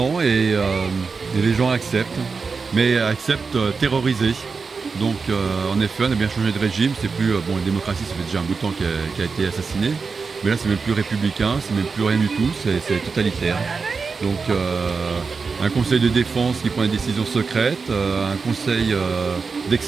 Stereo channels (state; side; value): quieter; left; 4.8 dB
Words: et les gens acceptent, mais acceptent terrorisés. Donc en effet, on a bien changé de régime. C'est plus la démocratie, ça fait déjà un bout de temps qui a été assassiné, mais là c'est même plus républicain, c'est même plus rien du tout, c'est totalitaire. Donc un conseil de défense qui prend des décisions secrètes, un conseil